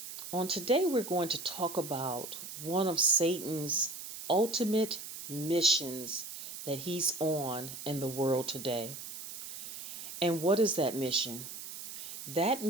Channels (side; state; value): right; noise; hiss, 9 dB below the sound